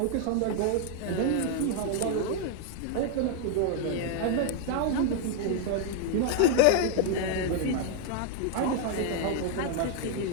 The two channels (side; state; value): both; different; correlation 0.00